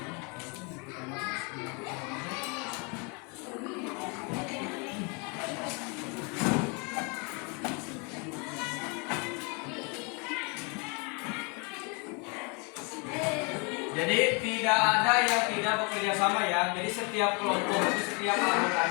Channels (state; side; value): quieter; right; 32.7 dB